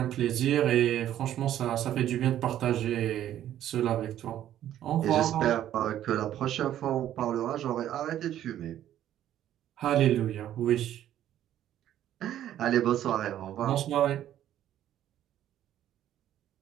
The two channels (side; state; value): left; quieter; 11.7 dB